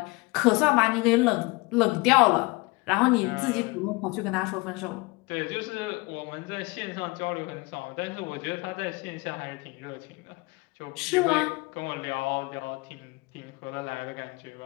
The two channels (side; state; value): right; quieter; 24.4 dB